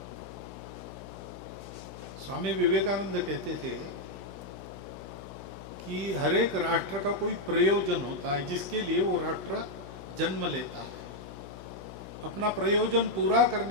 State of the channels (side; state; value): left; noise; hum, 14 dB below the sound